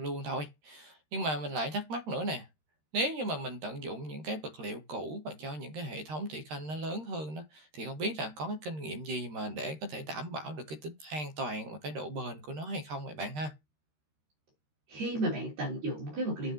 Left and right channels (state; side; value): late; left; 13 ms